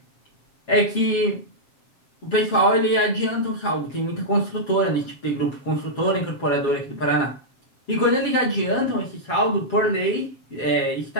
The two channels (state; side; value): late; right; 7.2 ms